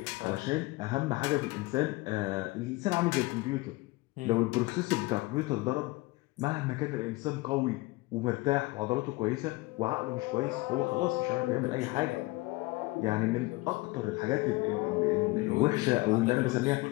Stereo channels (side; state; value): right; quieter; 22.0 dB